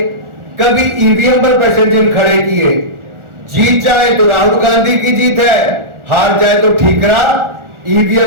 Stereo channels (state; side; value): late; left; 1.4 ms